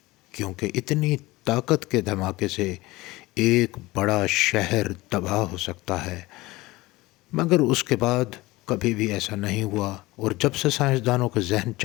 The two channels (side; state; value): right; quieter; 20.2 dB